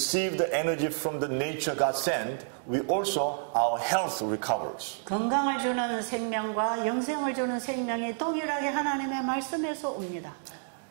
the energy from the nature God sent, we also, our health recovers. 건강을 주는 생명과 영생을 주는 생명이 동일하게 하나님의 말씀에서 옵니다.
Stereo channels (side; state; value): left; silent; digital silence